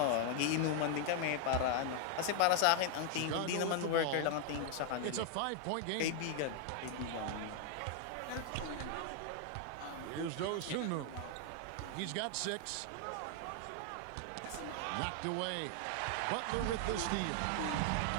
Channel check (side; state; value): both; different; correlation 0.01